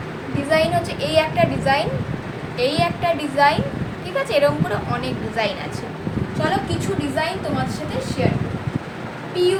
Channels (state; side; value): identical; both; correlation 1.00